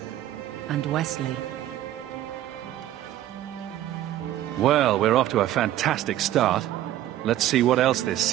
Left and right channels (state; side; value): quieter; left; 13.1 dB